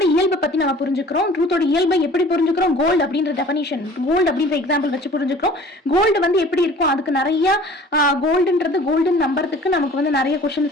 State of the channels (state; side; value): normal; both; correlation 0.48